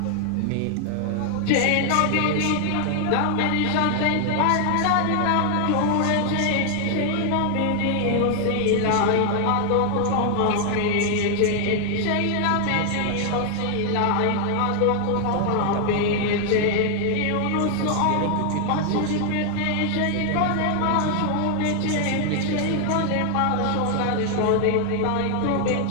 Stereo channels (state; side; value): different; both; correlation 0.00